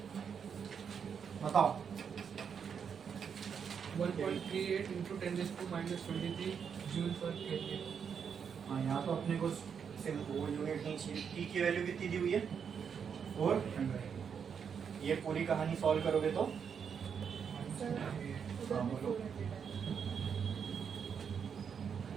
बताओ। 1.38 into 10⁻⁻23 जूल पर केजी। हाँ, यहाँ तो अपने को सिर्फ वो यूनिट नहीं चाहिए। टी की वैल्यू कितनी दी हुई है? 400। ये पूरी कहानी सॉल्व करोगे तो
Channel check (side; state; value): left; quieter; 7.0 dB